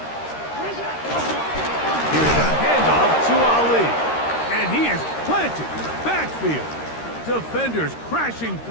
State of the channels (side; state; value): right; late; 13 ms